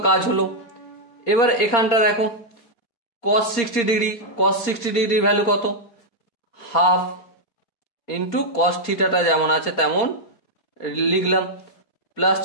কাজ হলো। এবার এখানটা দেখো cos 60 ডিগ্রির ভ্যালু কত? হাফ ইন্টু cos থিটাটা যেমন আছে তেমন লিখলাম। প্লাস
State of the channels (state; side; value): late; right; 4.3 ms